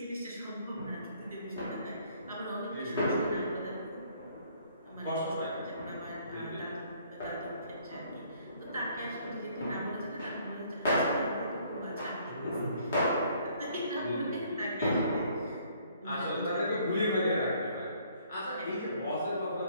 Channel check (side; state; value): both; inverted; correlation -0.62